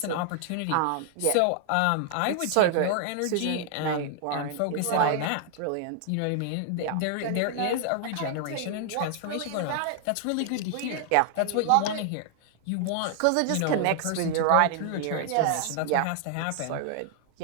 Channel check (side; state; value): both; different; correlation 0.00